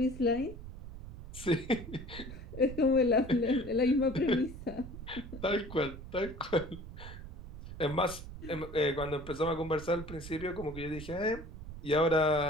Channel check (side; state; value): right; noise; rumble, 12 dB below the sound